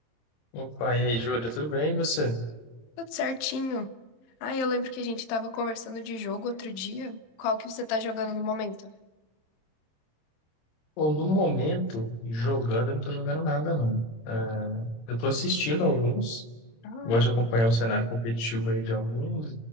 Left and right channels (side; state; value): right; late; 26 ms